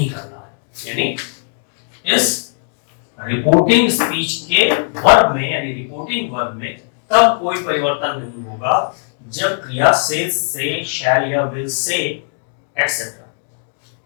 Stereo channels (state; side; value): silent; right; digital silence